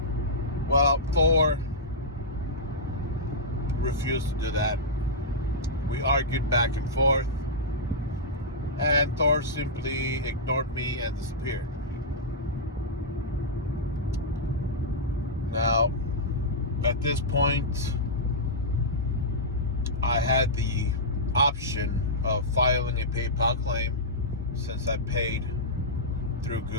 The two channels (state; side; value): normal; both; correlation -0.11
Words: Well, Thor refused to do that. We argued back and forth, and Thor simply ignored me and disappeared. Now, at this point, I had the option of filing a PayPal claim since I paid through